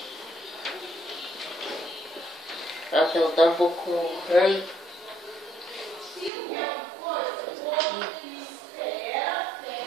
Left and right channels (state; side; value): drops out; left; at 6.3 s